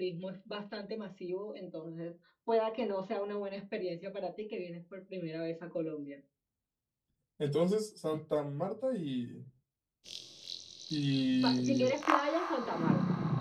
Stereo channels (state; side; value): identical; both; correlation 1.00